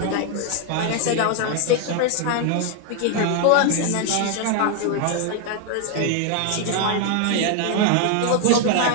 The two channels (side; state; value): both; different; correlation 0.01